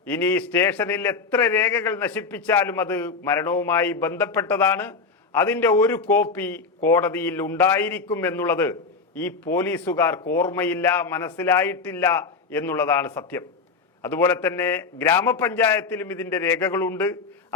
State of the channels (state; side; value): quieter; right; 4.6 dB